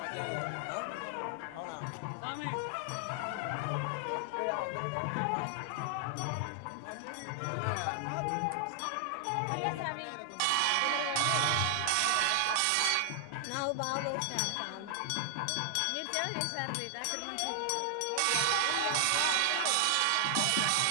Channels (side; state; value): both; different; correlation 0.00